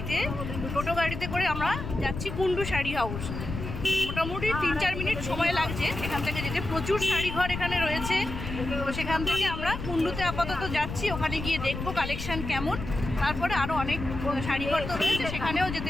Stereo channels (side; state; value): left; noise; rumble, 7 dB below the sound